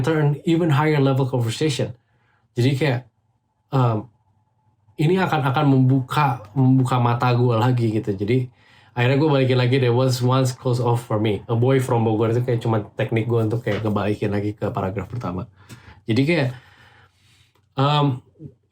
an even higher level conversation. Jadi kayak ini akan membuka mata gue lagi gitu. Jadi akhirnya gue balikin lagi, there was once closed off for me. A boy from Bogor itu kayak cuma teknik gue untuk kayak ngebalikin lagi ke paragraf pertama. Jadi kayak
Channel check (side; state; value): both; identical; correlation 1.00